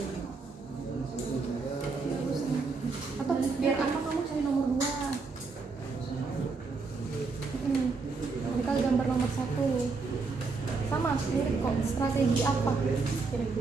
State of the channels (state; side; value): quieter; left; 4.3 dB